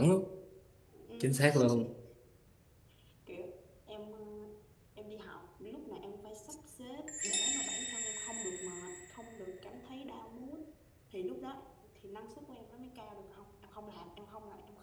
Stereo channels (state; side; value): identical; both; correlation 1.00